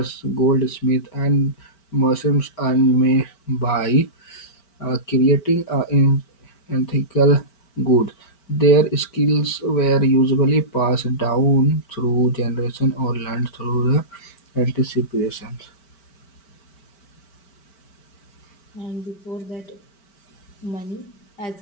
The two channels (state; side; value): late; right; 5.1 ms